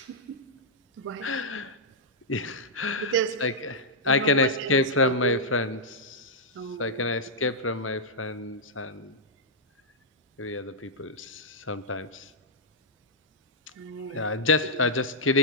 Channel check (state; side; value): normal; both; correlation -0.09